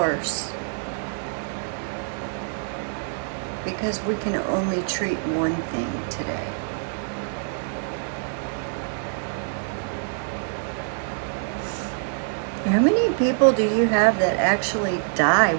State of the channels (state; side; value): silent; left; digital silence